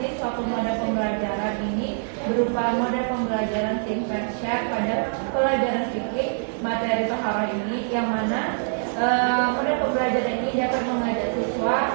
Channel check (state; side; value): silent; left; digital silence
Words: suatu mode pembelajaran ini berupa mode pembelajaran tingkat share pada pelajaran fikih materi taharah ini, yang mana mode pembelajaran ini dapat mengajak siswa